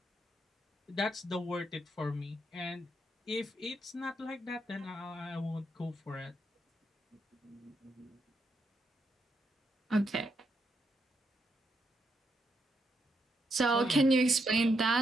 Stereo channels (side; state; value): both; normal; correlation 0.80